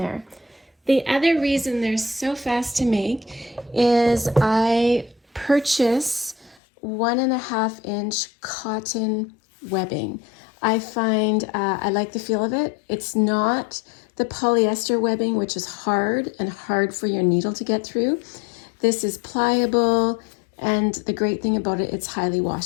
The other reason they're so fast to make is I purchase 1.5-inch cotton webbing. I find I like the feel of it. It's not the polyester webbing, which is hard for your needle to get through. This is pliable, and the great thing about it, it's highly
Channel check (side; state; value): right; drops out; at 6.6 s